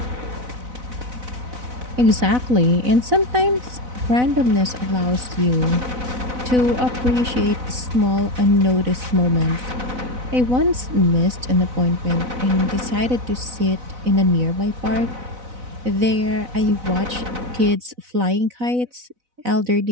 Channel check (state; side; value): late; left; 4.0 ms